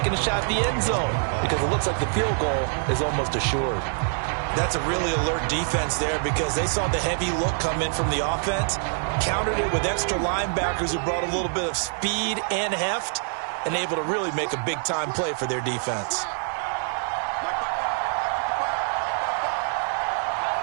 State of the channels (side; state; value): left; silent; 57 dB below the other